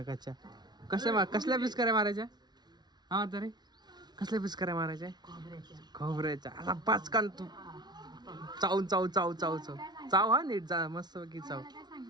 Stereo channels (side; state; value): left; late; 0.20 ms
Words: कसल्या पिचकाऱ्या मारायच्या? हा तरी कसल्या पिचकाऱ्या मारायच्या? खोबऱ्याच्या. आता पाचकान तू चाव चाव चाव चाव चाव चाव हा नीट जा मस्त की चाव.